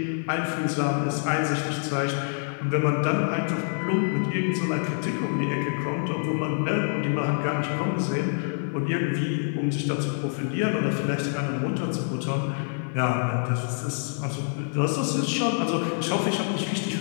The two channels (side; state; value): right; silent; 61 dB below the other